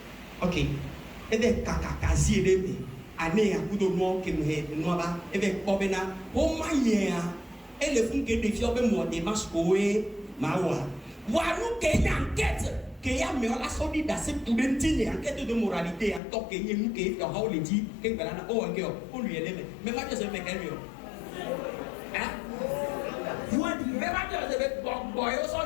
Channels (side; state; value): right; drops out; at 16.2 s